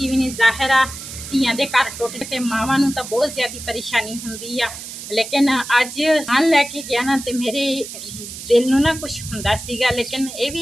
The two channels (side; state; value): right; noise; hiss, 11 dB below the sound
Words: जाहिर आ ਧੀਆਂ ਦੇ ਘਰ ਟੁੱਟ ਤੇ ਮਾਵਾਂ ਨੂੰ ਤਾਂ ਬਹੁਤ ਜ਼ਿਆਦਾ ਪਰੇਸ਼ਾਨੀ ਹੁੰਦੀ ਆ। ਲੇਕਿਨ ਅੱਜ ਨਾਲ ਲੈ ਕੇ ਗਿਆ ਨਾ ਤੇ ਮੇਰੇ ਦਿਲ ਨੂੰ ਨਾ ਕੁਝ ਹੁੰਦਾ ਸੀਗਾ, ਲੇਕਿਨ ਇਹ